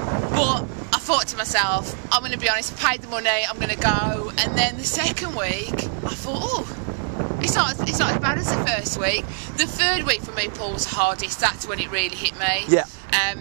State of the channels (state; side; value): silent; left; digital silence